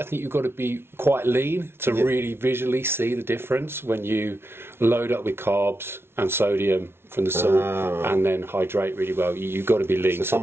think you've got to be quite lean to really visually see the difference when you load up with carbs and sodium from the salt and then hydrate really well. You've got to be lean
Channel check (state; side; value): late; left; 0.12 ms